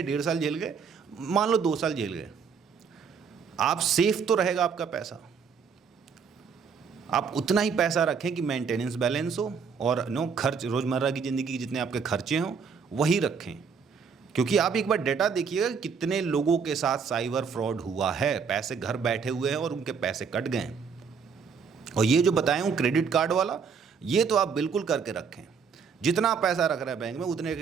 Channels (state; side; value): quieter; left; 6.0 dB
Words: 1.5 साल झेल गए, मान लो 2 साल झेल गए, आप सेफ तो रहेगा आपका पैसा। आप उतना ही पैसा रखें कि मेंटेनेंस बैलेंस हो, और खर्च, रोज़मर्रा की ज़िंदगी के जितने आपके खर्चे हों वही रखें। क्योंकि आप एक बार डेटा देखिएगा कितने लोगों के साथ साइबर फ्रॉड हुआ है, पैसे घर बैठे हुए हैं और उनके पैसे कट गए। और ये जो बताया हूँ क्रेडिट कार्ड वाला, ये तो आप बिल्कुल करके रखें। जितना पैसा रख रहे हैं बैंक में, उतने